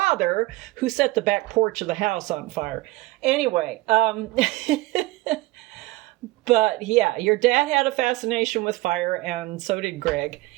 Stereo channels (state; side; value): quieter; left; 20.3 dB